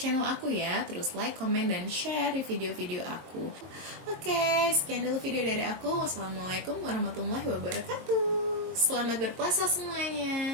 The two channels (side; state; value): left; late; 22 ms